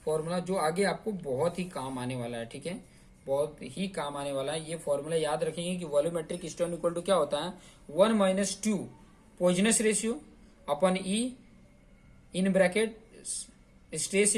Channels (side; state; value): both; identical; correlation 1.00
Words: फॉर्मूला जो आगे आपको बहुत ही काम आने वाला है, ठीक है, बहुत ही काम आने वाला है। ये फॉर्मूला याद रखेंगे कि वॉल्यूमेट्रिक स्ट्रेन इक्वल टू क्या होता है, 1 minus 2 Poisson's ratio upon E in bracket stress